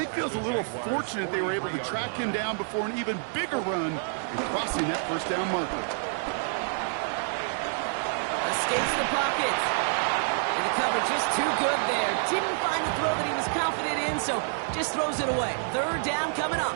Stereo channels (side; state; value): left; silent; 59 dB below the other